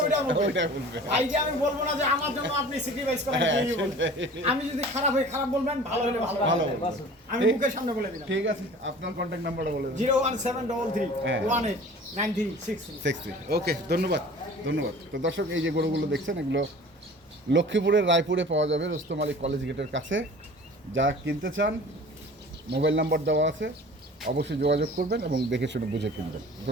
ওইটা বলবে। ওইটা বলবে। ভাই যে আমি বলবো না যে আমার জন্য আপনি স্যাক্রিফাইস করেন, হ্যাঁ, কেউই বলবে। আমি যদি খারাপ হই খারাপ বলবেন, ভালো হলে ভালো ভালো বলবেন। বলবেন। আমি মুখের সামনে বলে দিলাম। ঠিক আছে আপনার কন্ট্যাক্ট নাম্বারটা বলে দেন। 01733 হ্যাঁ। 189363। 63। ওকে ধন্যবাদ ধন্যবাদ। তো দর্শক এই যে গরুগুলো দেখছেন, এগুলো লক্ষ্মীপুরের রায়পুরে পাওয়া যাবে, রুস্তম আলী কলেজ গেটের কাছে। যারা কিনতে চান মোবাইল নাম্বার দেওয়া আছে, অবশ্যই যোগাযোগ করবেন এবং দেখে শুনে বুঝে কিনবেন।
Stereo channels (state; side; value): normal; both; correlation 0.44